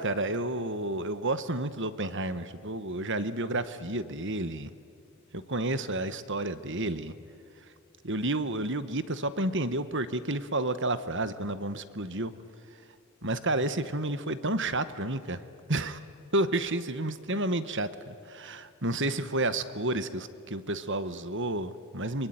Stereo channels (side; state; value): both; normal; correlation 0.10